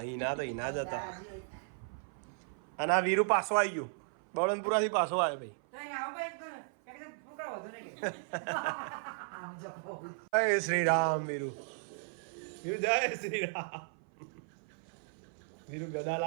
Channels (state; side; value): silent; left; 54 dB below the other